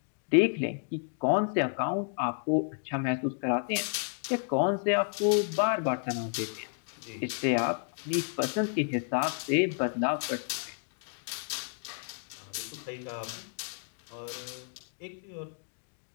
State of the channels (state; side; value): silent; right; 57 dB below the other